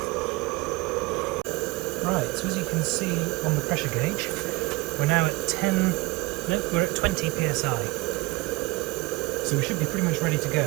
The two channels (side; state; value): left; quieter; 23.0 dB